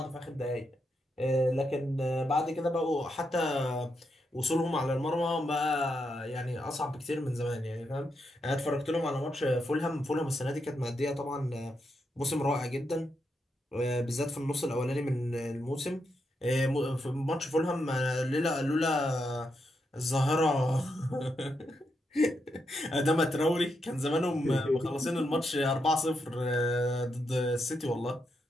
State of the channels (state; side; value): normal; both; correlation 0.82